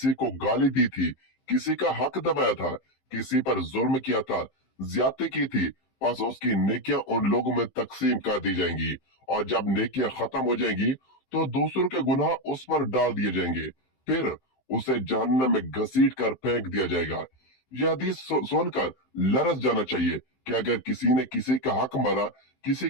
को गाली दी थी, किसी का हक दबाया था, किसी पर जुल्म किया था, ज्यादती की थी, बस उसकी नेकियां उन लोगों में तकसीम कर दी जाएंगी और जब नेकियां खत्म हो जाएंगी तो दूसरों के गुनाह उस पर डाल दिए जाएंगे, फिर उसे जहन्नम में घसीट कर फेंक दिया जाएगा। यह हदीस सुनकर लरस जाना चाहिए कि अगर किसी ने किसी का हक मारा, किसी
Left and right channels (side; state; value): right; late; 15 ms